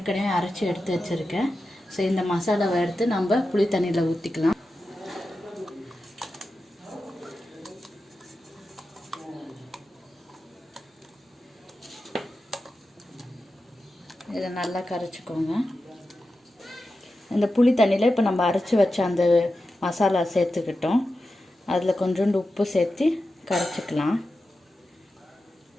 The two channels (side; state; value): both; normal; correlation 0.91